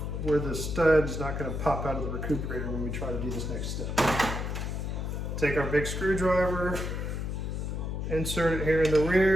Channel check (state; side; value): noise; left; hum, 3 dB below the sound